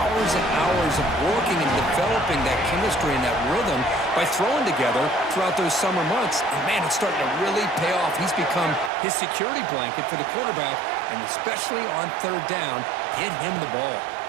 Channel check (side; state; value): left; drops out; at 8.9 s